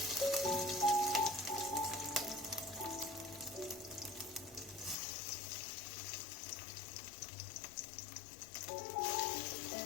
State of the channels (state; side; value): drops out; right; at 5.0 s